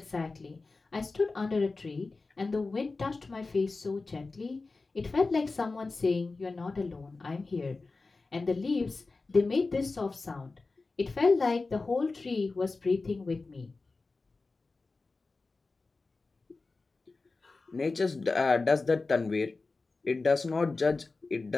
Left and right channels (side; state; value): right; quieter; 3.7 dB